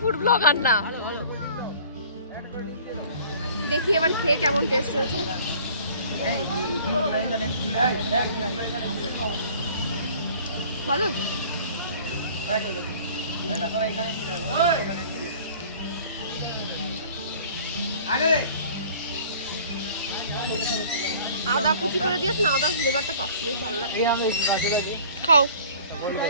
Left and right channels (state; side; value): inverted; both; correlation -0.49